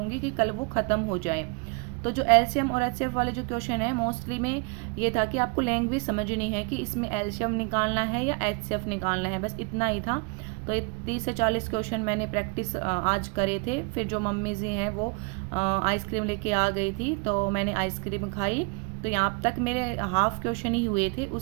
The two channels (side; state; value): left; quieter; 32.0 dB